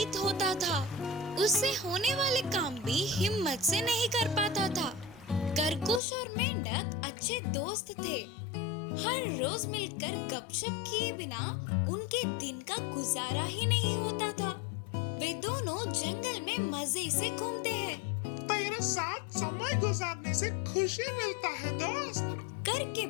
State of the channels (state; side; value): drops out; right; at 6.0 s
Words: होता था। उससे होने वाले काम भी हिम्मत से नहीं कर पाता था। खरगोश और मेंढक अच्छे दोस्त थे। हर रोज मिलकर गपशप किए बिना उनके दिन का गुजारा ही नहीं होता था। वे दोनों जंगल में मजे से घूमते हैं। तेरे साथ समय गुजारने से खुशी मिलता है दोस्त, करके